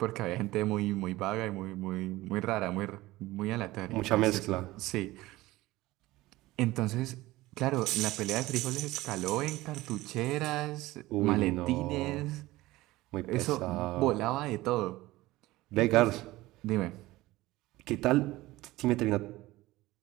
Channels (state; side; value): quieter; left; 18.4 dB